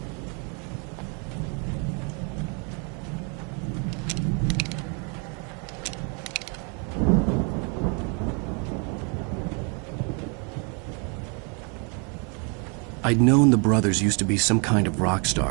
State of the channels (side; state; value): left; quieter; 35.9 dB